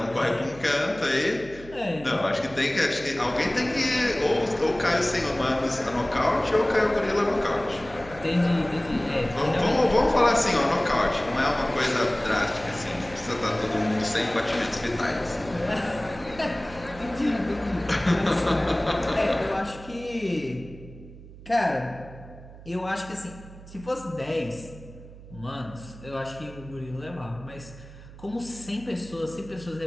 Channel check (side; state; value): right; noise; hum, 17 dB below the sound